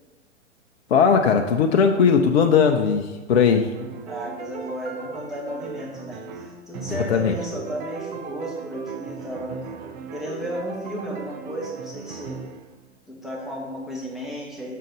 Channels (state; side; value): quieter; right; 4.9 dB